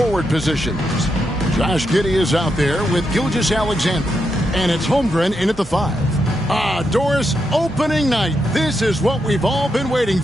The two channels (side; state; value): both; normal; correlation 0.83